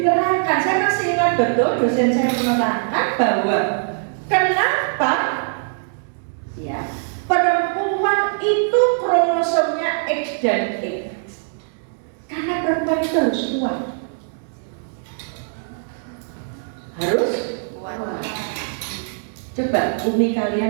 saya masih ingat betul dosen saya menerangkan bahwa kenapa ya perempuan itu kromosomnya X dan X. Karena perempuan itu harus kuat. Harus kuat. Coba umi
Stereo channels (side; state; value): left; silent; digital silence